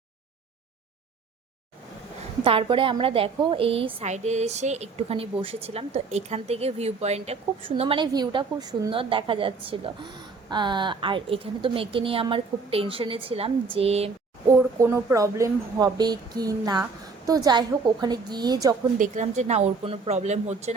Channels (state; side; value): quieter; left; 4.5 dB